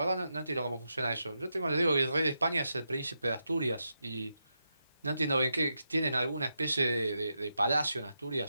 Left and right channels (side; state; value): both; inverted; correlation -0.85